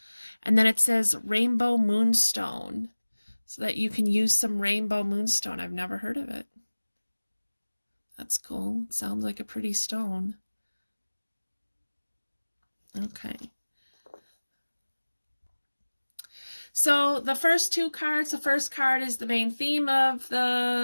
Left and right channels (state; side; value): inverted; both; correlation -1.00